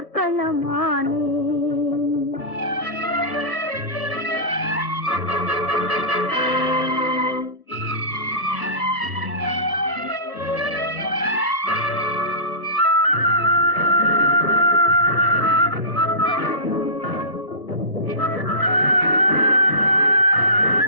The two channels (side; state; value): right; late; 1.7 ms